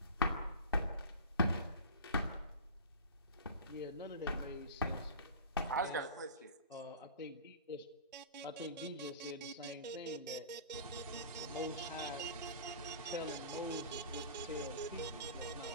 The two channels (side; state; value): both; inverted; correlation -0.36